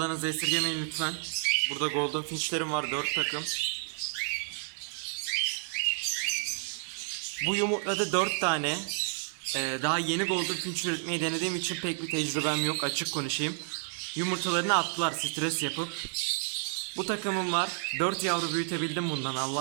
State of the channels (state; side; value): silent; left; 57 dB below the other